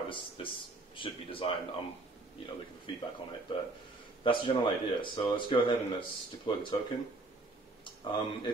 this should be designed. I'm looking for feedback on it, but that's the general idea. So let's go ahead and let's deploy the token.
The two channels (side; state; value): left; quieter; 3.0 dB